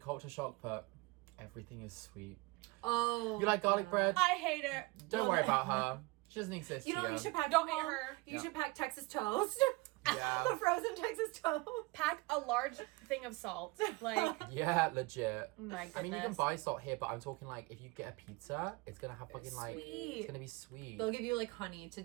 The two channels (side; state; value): left; quieter; 23.7 dB